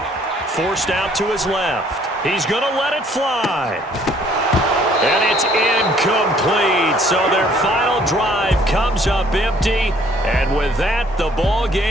Forced out to his left. He's going to let it fly. And it's incomplete. So their final drive comes up empty. And with that, the ball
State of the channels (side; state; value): both; normal; correlation 0.61